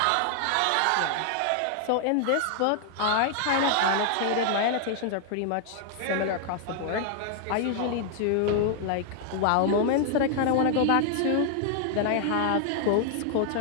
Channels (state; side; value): different; both; correlation 0.00